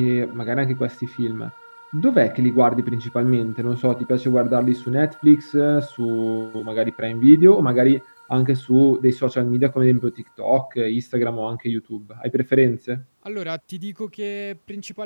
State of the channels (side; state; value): both; inverted; correlation -1.00